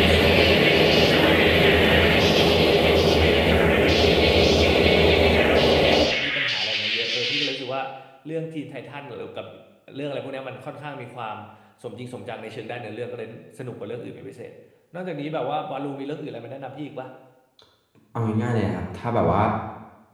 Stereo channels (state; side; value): identical; both; correlation 1.00